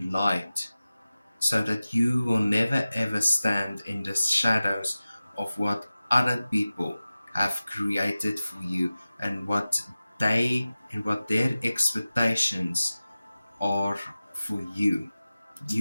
light, so that you will never ever stand in the shadows of what other people have created for you, and what their expectations are for you.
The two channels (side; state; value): both; inverted; correlation -0.96